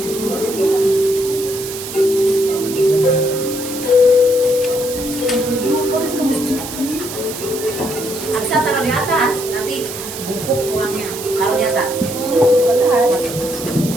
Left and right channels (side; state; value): right; noise; hiss, 9 dB below the sound